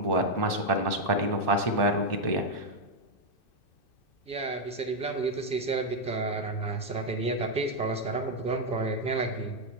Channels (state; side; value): late; right; 2.6 ms